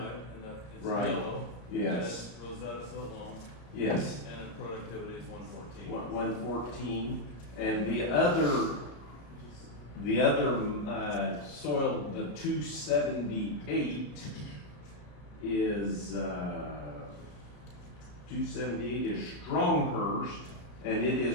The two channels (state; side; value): late; right; 33 ms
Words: it's Right. yellow. Yes. Rosetta's so long, Yes. and productivity is 114. 114, and the other soil, the 278 is, 278 is Stronghurst, and it